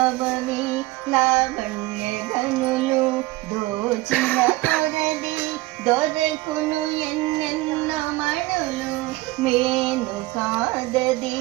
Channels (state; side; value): quieter; left; 19.7 dB